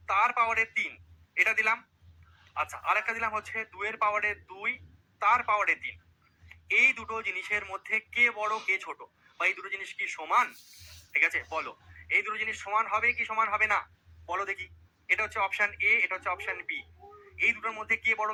তার পাওয়ারে 3, এটা দিলাম। আচ্ছা, আরেকটা দিলাম হচ্ছে 2 এর পাওয়ারে 2 তার পাওয়ারে 3। এই দুটো জিনিসের মধ্যে কে বড় কে ছোট, বা এই দুটো জিনিস কি সমান? ঠিক আছে, বলো এই দুটো জিনিস সমান হবে কি সমান হবে না? বলো দেখি। এটা হচ্ছে অপশন এ, এটা হচ্ছে অপশন বি। এই দুটোর মধ্যে কে বড়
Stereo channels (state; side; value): identical; both; correlation 1.00